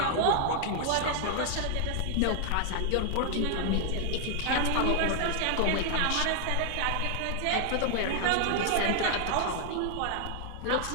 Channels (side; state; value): both; different; correlation 0.00